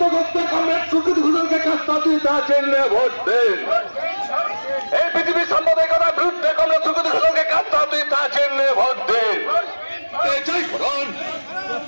করতে কংগ্রেস সুকৃতি ঘোষালকে কাস্তা হাতুড়িতা চিহ্নে ভোট দিন। এই পৃথিবীর সাম্প্রদায়িকতার বিরুদ্ধে কংগ্রেস সুকৃতি ঘোষালকে কাস্তা হাতুড়িতা চিহ্নে ভোট দিন। জয় করুন।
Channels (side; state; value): both; inverted; correlation -1.00